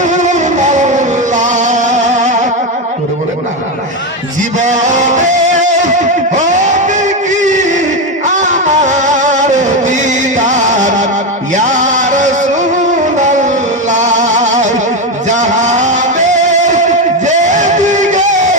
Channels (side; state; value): both; normal; correlation 0.12